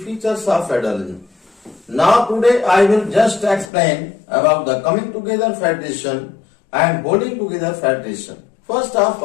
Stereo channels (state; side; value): drops out; right; at 3.7 s